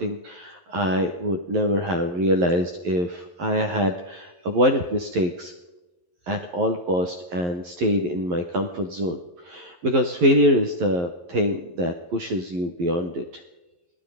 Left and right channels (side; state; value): left; late; 11 ms